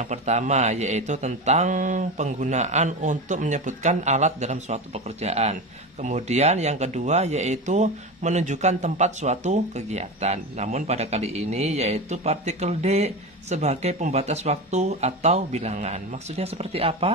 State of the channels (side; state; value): both; normal; correlation 0.23